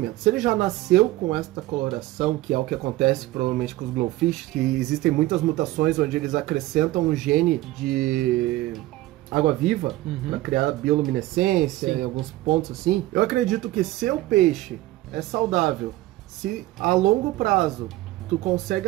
Se ele já nasceu com esta coloração, que é o que acontece provavelmente com os glowfish, que existem muitas mutações onde eles acrescentam um gene de água-viva para criar bioluminescência em alguns pontos assim. Eu acredito que se o peixe é saudável, se a longo prazo tu consegue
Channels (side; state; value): left; quieter; 17.0 dB